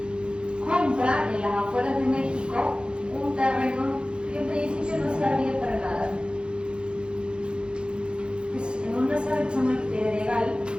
compra en las afueras de México un terreno que en principio no servía para nada. Es en una zona que se llama el Pedregal,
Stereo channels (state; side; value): late; left; 0.053 ms